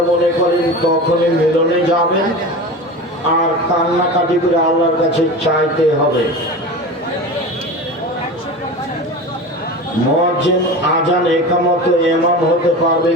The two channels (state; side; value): normal; both; correlation 0.30